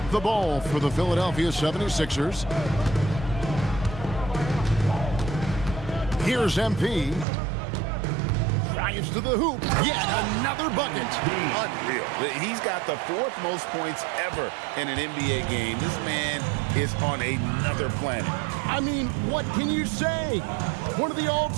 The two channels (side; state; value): left; drops out; at 7.2 s